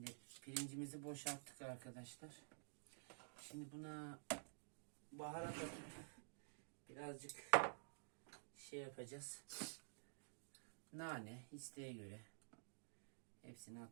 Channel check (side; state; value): left; silent; digital silence